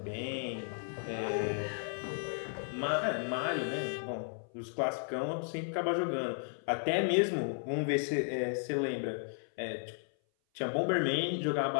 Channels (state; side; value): silent; right; 55 dB below the other